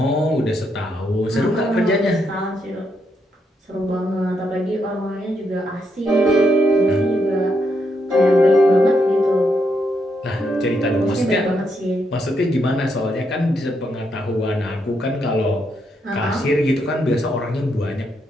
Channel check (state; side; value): normal; both; correlation 0.79